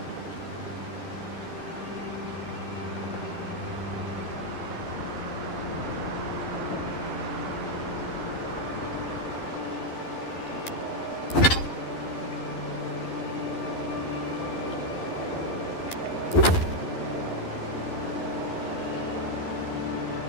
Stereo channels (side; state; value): right; late; 11 ms